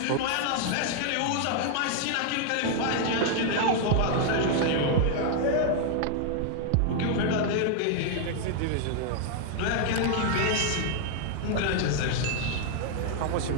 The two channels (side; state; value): both; different; correlation 0.00